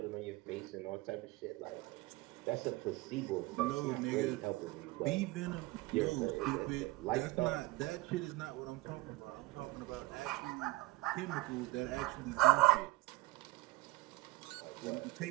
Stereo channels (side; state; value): left; quieter; 20.0 dB